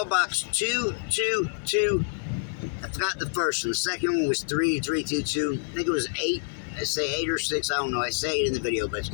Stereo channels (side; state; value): right; silent; 60 dB below the other